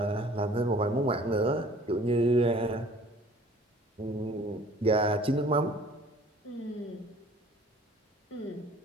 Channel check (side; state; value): both; normal; correlation 0.51